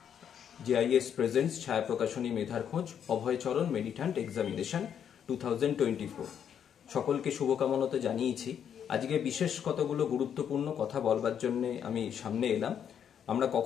JIS প্রেজেন্টস ছায়া প্রকাশনী মেধার খোঁজ অভয়চরণ মেডিট্যান্ট এক্সামিনেশন 2024। সকলকে শুভকামনা তো জানিয়েছি। আজকে বিশেষ কতগুলো গুরুত্বপূর্ণ কথা বলবার জন্য আমি সামনে এলাম। আমরা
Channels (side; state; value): right; quieter; 8.6 dB